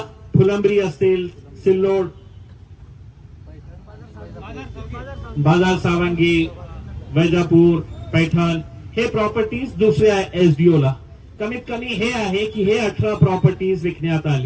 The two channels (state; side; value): identical; both; correlation 1.00